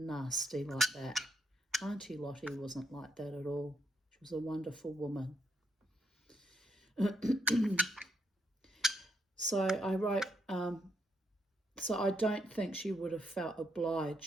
like that. Auntie Lottie wasn't like that at all. She was a wonderful woman. So I wrote, so I don't think she would have felt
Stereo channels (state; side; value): normal; both; correlation 0.76